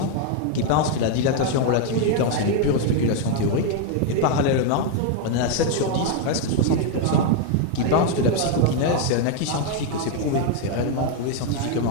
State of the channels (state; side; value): different; both; correlation 0.01